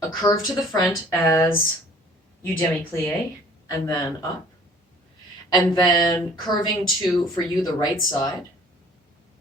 a curve to the front as you demi-plié and then up. And then curving to, for you, the right side.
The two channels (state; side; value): normal; both; correlation 0.53